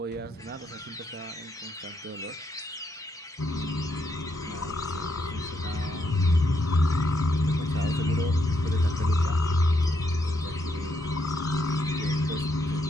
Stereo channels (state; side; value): normal; both; correlation 0.77